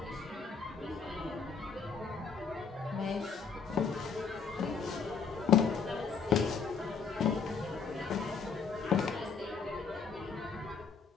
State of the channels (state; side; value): quieter; right; 5.5 dB